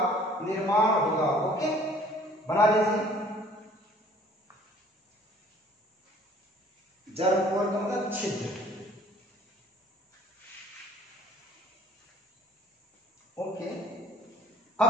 निर्माण होगा। ओके, बना लीजिए। जर्मपोर का मतलब छिद्र। ओके, अब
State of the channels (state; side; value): normal; both; correlation 0.54